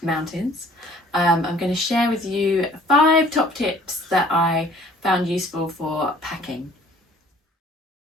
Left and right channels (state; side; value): normal; both; correlation 0.55